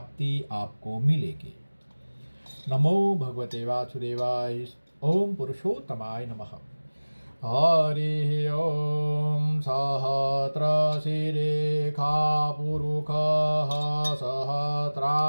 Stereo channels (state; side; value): inverted; both; correlation -1.00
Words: आपको मिलेगी। नमो भगवते वासुदेवाय। ओम पुरुषोत्तमाय नमः। हरि ओम। सहस्रशिरेखा पुरुषः